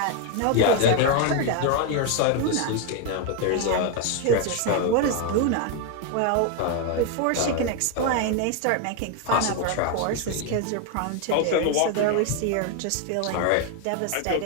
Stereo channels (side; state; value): both; different; correlation 0.01